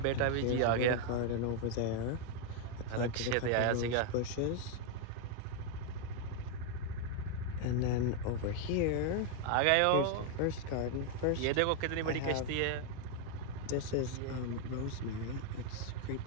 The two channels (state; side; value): different; both; correlation 0.00